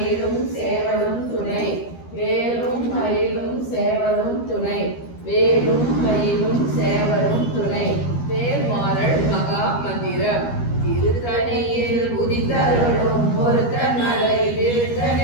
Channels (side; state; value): right; late; 13 ms